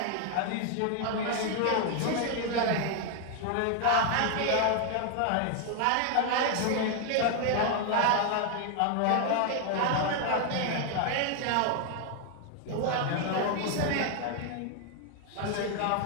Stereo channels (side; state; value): both; different; correlation 0.01